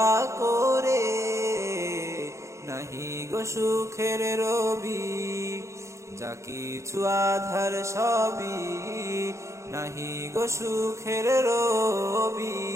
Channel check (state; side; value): late; left; 0.14 ms